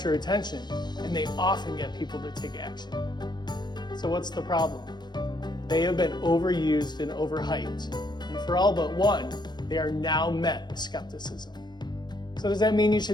attention, and they often get people to take action. So what's the problem? They have been overused and overhyped, and for all but one, they are now met with skepticism. So does that mean you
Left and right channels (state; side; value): late; right; 0.21 ms